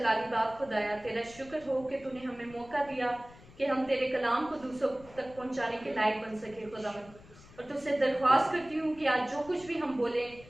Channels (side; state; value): left; noise; rumble, 21 dB below the sound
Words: बाप खुदाया, तेरा शुक्र हो कि तूने हमें मौका दिया कि हम तेरे कलाम को दूसरों तक पहुंचाने के लायक बन सके खुदावन। और तुझसे दरख्वास्त करती हूँ कि आज जो कुछ भी हम बोले